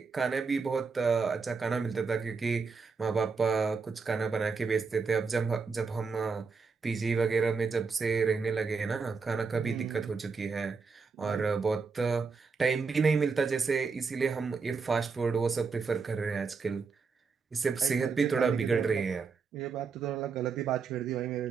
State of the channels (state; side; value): quieter; left; 4.9 dB